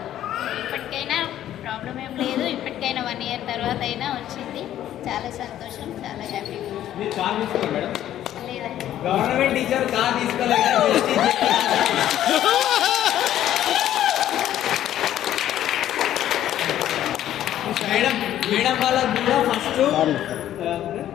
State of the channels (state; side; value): quieter; right; 12.0 dB